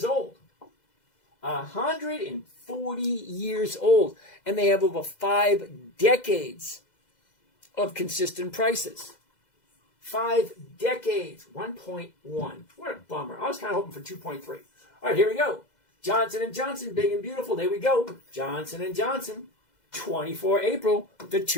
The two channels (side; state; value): right; late; 2.0 ms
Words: old. 140 years old. And they have over 5 decades of consistent prices. 5 decades. 1.1. What a bummer. I was kind of hoping for 2.3. All right, here we go. Johnson & Johnson, big and beautiful. There we go. Johnson & Johnson, 24 April, the